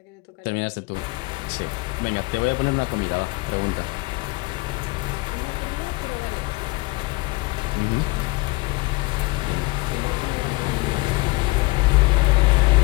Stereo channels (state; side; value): quieter; right; 24.2 dB